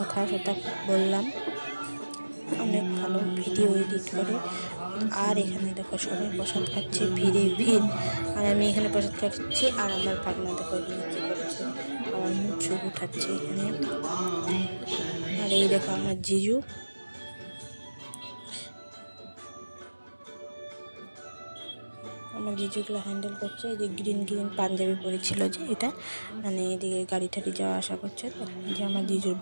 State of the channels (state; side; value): inverted; both; correlation -1.00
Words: বললাম, অনেক ভালো ভিডিও এডিট করে। আর এখানে দেখো সবাই প্রসাদ খাচ্ছে, ভিড়ে ভিড়। আর আমি এখানে প্রসাদ খাচ্ছি, আর আমার ভাগনা দেখো এখানে কী করছে, আমার মুখ চুখ উঠাচ্ছে এখানে। আর এই দেখো আমার জিজু, আমার জিজুগুলো হ্যান্ডেল করছে। এই যে গ্রিন গ্রিন পাঞ্জাবি পরেছিল, যে এটা মানে এদিকে গাড়ি টাড়ি যাওয়া আসা করছে। তো যে আমার জিজুর